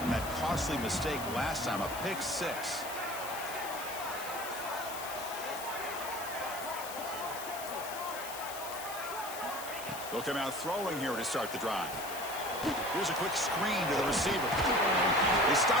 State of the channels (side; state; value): left; noise; hiss, 10 dB below the sound